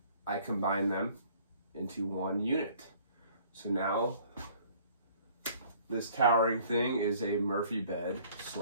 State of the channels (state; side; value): inverted; both; correlation -0.56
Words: I combined them into one unit. So now this towering thing is a Murphy bed